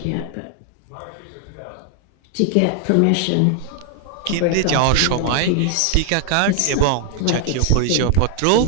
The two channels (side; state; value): both; different; correlation 0.00